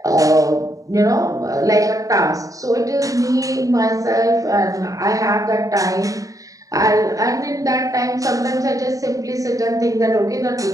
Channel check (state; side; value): late; left; 0.16 ms